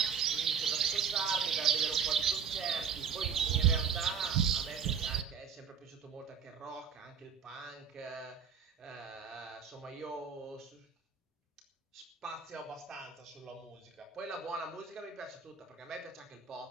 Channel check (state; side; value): quieter; left; 6.8 dB